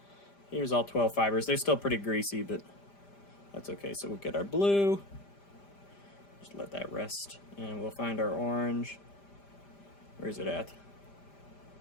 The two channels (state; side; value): late; right; 5.0 ms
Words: Here's all 12 fibers. They're still pretty greasy, but that's okay. So we'll get our blue. Just let that rest. And we'll find our orange. Where is it at?